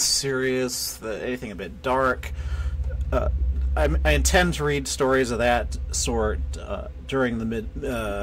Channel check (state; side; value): identical; both; correlation 1.00